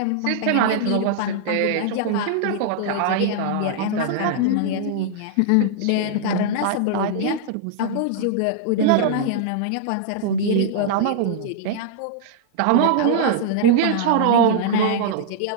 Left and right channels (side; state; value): both; different; correlation -0.01